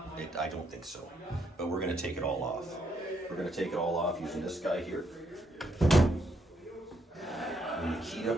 I don't think so. But we're going to take it all off. We're going to take it all off using this guy here. The Nikita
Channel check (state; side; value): normal; both; correlation 0.75